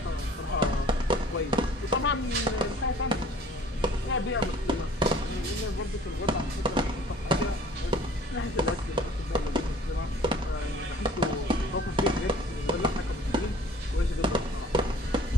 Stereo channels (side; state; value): both; normal; correlation 0.52